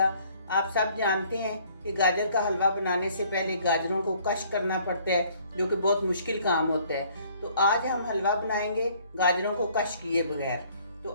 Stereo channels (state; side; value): inverted; both; correlation -0.60